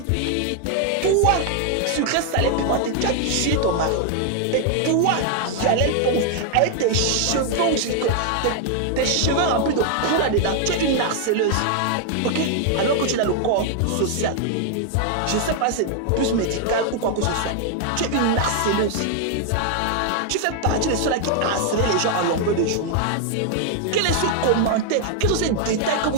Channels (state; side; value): different; both; correlation 0.00